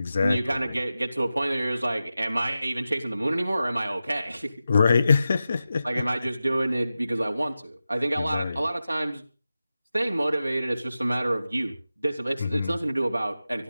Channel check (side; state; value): both; inverted; correlation -0.93